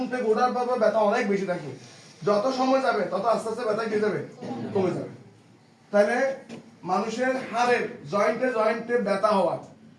থেকে ওঠার পর ব্যথা অনেক বেশি থাকবে, যত সময় যাবে তত আস্তে আস্তে ব্যথা কি যাবে? কমে যাবে। তাহলে মানুষের হাড়ের জয়েন্টে ব্যথা হওয়া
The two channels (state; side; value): identical; both; correlation 1.00